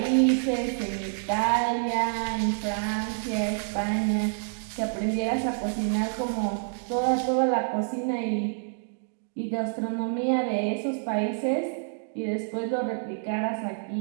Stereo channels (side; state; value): left; silent; digital silence